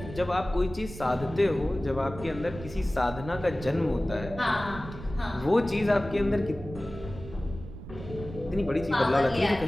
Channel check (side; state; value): right; noise; rumble, 13 dB below the sound